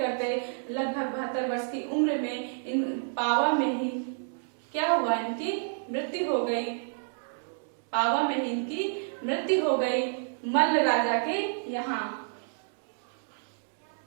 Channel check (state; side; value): silent; left; digital silence